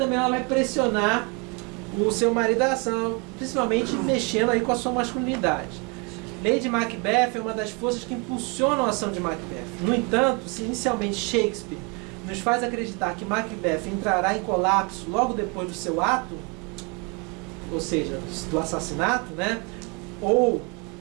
ela vai pressionar o seu marido à ação, principalmente mexendo aí com a sua masculinidade. Lady Macbeth é uma das forças que impulsionam a ação de Macbeth. No entanto, se inicialmente Shakespeare nos faz acreditar que Macbeth entrará em colapso logo depois do seu ato, ou seja, do assassinato, né? Ou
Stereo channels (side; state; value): left; quieter; 30.9 dB